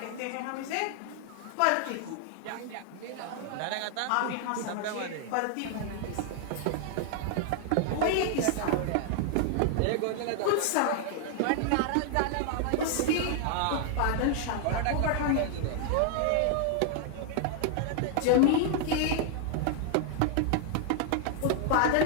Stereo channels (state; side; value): different; both; correlation 0.00